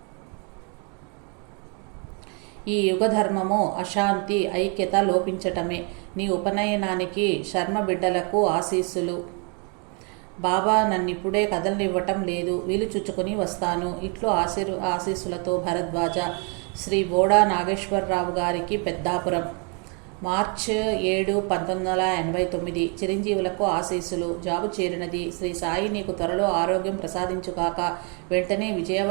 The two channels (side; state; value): left; quieter; 36.1 dB